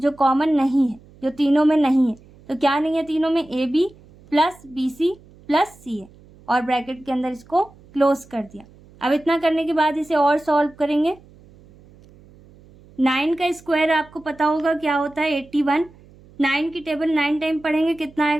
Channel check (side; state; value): right; noise; hum, 25 dB below the sound